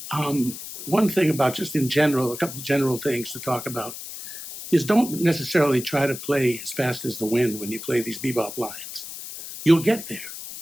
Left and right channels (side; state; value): left; noise; hiss, 10 dB below the sound